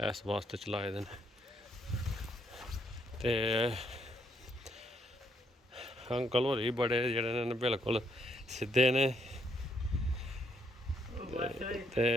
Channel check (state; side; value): normal; both; correlation 0.72